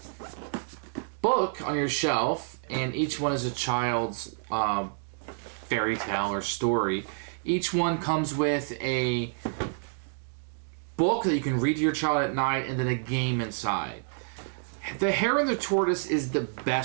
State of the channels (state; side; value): silent; left; digital silence